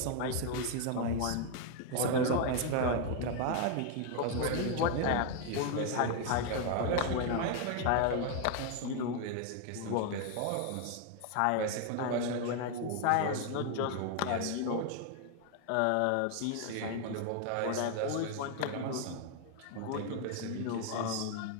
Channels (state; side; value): different; both; correlation 0.01